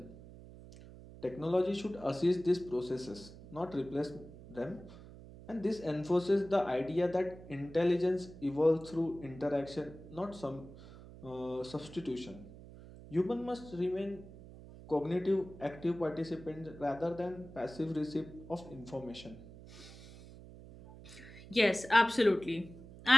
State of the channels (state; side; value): noise; right; hum, 17 dB below the sound